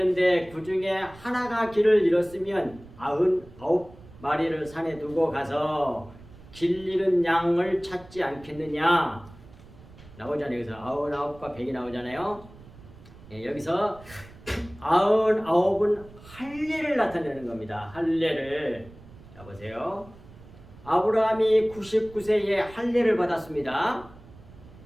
그 중에 하나가 길을 잃었으면 99마리를 산에 두고 가서 길 잃은 양을 찾지 않겠느냐? 나오잖아요. 여기서 99과 100이 나오잖아요. 여기서 99은 할례를 나타내는 겁니다. 할례를. 자, 보세요. 아브라함이 99세에 할례를 받았습니다.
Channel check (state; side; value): noise; right; rumble, 21 dB below the sound